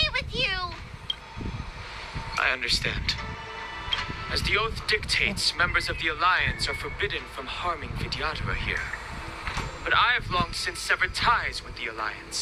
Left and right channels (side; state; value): both; identical; correlation 1.00